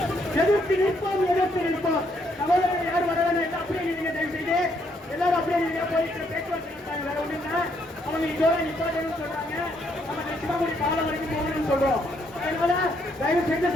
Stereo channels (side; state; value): both; normal; correlation 0.72